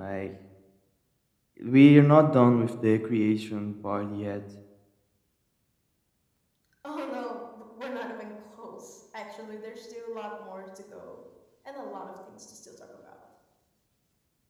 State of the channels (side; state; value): both; identical; correlation 1.00